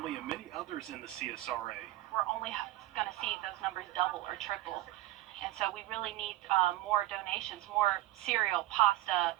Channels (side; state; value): left; quieter; 15.8 dB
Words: and many others in the CSRA. We're only going to see those numbers double or triple. And so we really need more donations, more cereal, pasta,